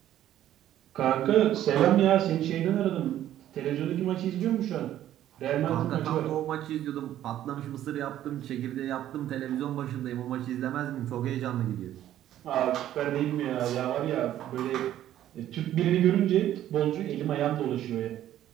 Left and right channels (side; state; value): left; quieter; 12.3 dB